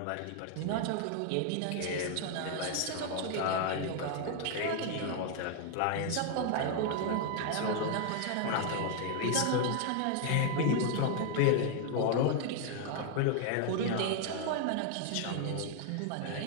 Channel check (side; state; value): both; different; correlation 0.00